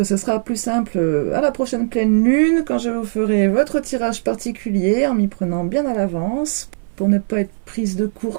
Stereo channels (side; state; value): left; silent; 61 dB below the other